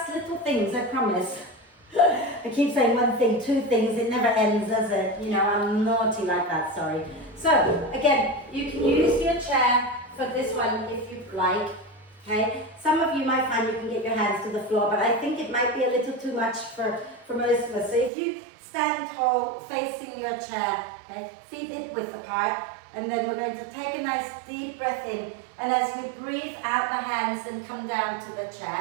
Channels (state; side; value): drops out; left; at 18.1 s